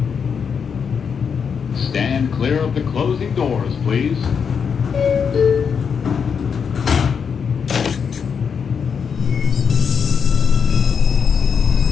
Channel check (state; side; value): quieter; right; 6.5 dB